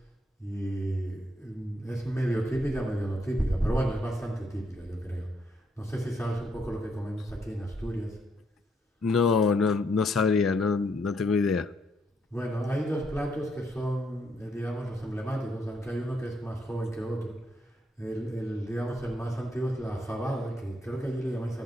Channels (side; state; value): both; normal; correlation 0.74